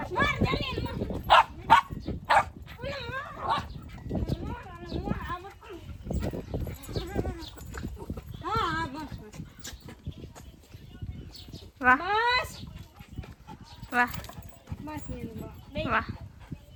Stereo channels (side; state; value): both; identical; correlation 1.00